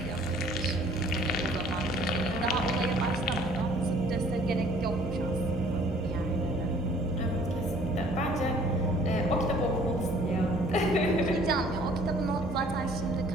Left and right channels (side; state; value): both; normal; correlation 0.55